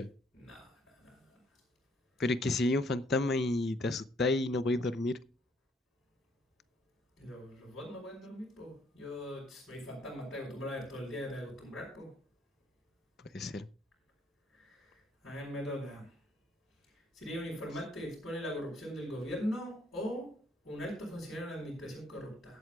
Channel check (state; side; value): normal; both; correlation 0.67